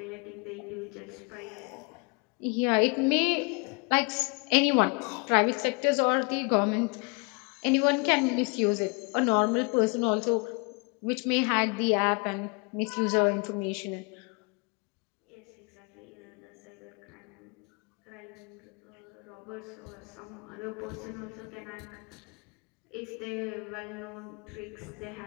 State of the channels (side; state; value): right; quieter; 31.4 dB